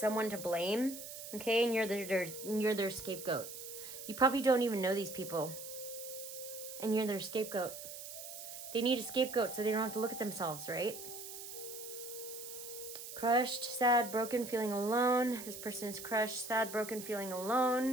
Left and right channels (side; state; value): right; noise; hiss, 10 dB below the sound